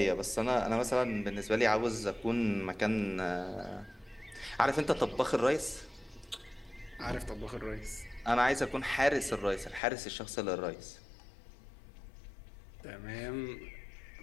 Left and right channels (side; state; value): right; drops out; at 9.8 s